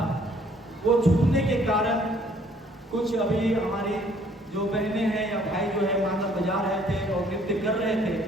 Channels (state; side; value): normal; both; correlation 0.61